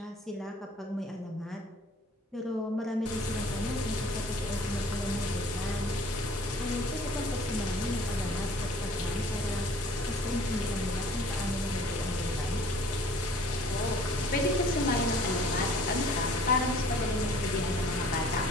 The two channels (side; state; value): both; normal; correlation 0.52